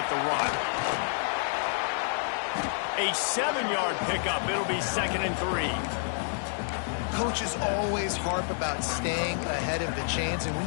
the rock. A 7-yard pickup. It'll be 2nd and 3. Coaches always harp about staying ahead of the chains, and when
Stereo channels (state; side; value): silent; right; digital silence